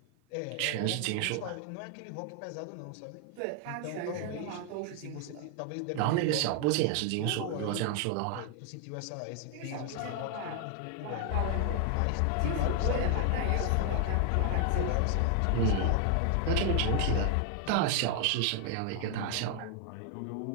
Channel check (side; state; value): both; different; correlation 0.00